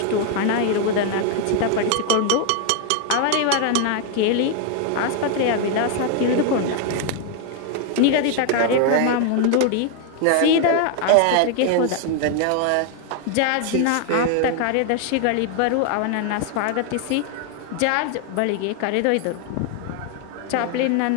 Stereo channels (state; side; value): different; both; correlation 0.00